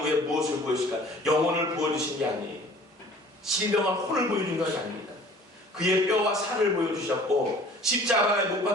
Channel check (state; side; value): normal; both; correlation 0.49